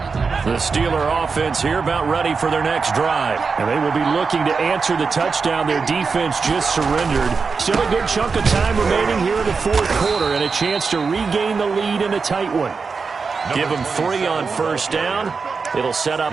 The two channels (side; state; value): left; quieter; 5.0 dB